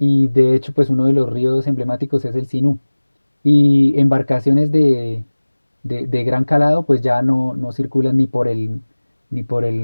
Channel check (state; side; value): inverted; both; correlation -1.00